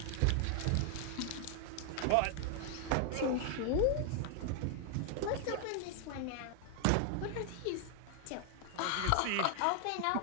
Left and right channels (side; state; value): both; different; correlation 0.00